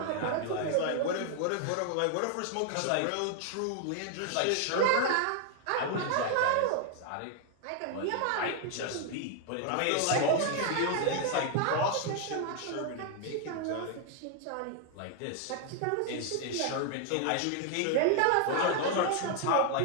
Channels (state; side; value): different; both; correlation 0.00